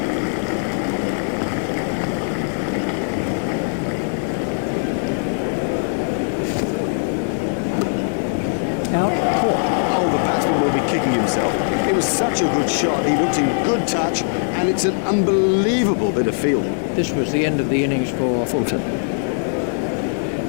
Out, caught. Oh, the batsman will be kicking himself. It was such a good shot. He looked in good touch, and it's an unbelievable bit of fielding. This was the end of the innings for Fulton.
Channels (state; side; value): silent; right; 65 dB below the other